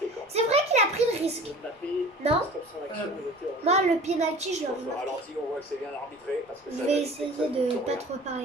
quand même. C'est vrai qu'il a pris le risque. Mbappé, Non. stop son action, il était hors jeu. Moi, le penalty, je Sur l'aurais ce marqué. ralenti, on voit que c'est bien arbitré. Parce que Je ça vais valide essayer que ça de bouge pas rien. trop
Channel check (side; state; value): both; normal; correlation 0.43